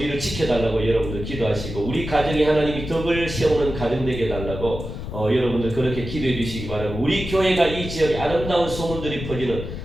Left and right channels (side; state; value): left; noise; rumble, 8 dB below the sound